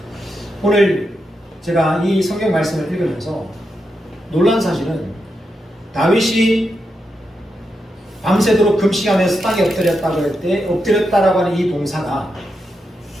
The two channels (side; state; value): both; normal; correlation 0.85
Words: 오늘 제가 이 성경 말씀을 읽으면서 놀란 사실은 다윗이 밤새도록 금식하면서 땅에 엎드렸다고 할 때 엎드렸다라고 하는 이 동사가